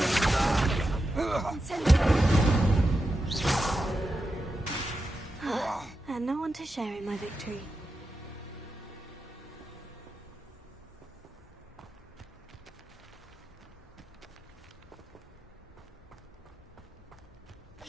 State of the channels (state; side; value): normal; both; correlation 0.89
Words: And no one to share in my victory.